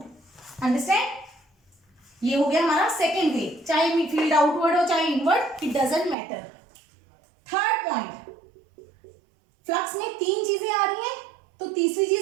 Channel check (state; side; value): drops out; left; at 6.2 s